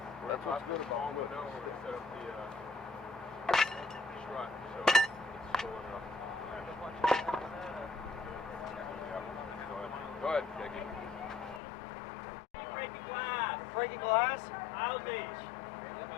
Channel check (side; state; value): right; drops out; at 11.6 s